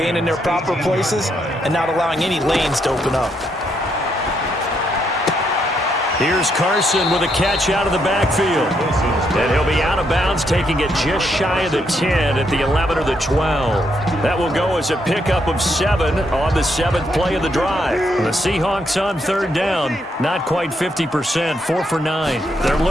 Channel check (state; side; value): normal; both; correlation 0.77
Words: in their proper places and not allowing any lanes to open up. Here's Carson with a catch out of the backfield. And he'll be out of bounds, taking it just shy of the 10 at the 11 or the 12. That will go as a pickup of 7 on the 7th play of the drive. The Seahawks on 3rd down, not quite 50%, 4 for 9. They're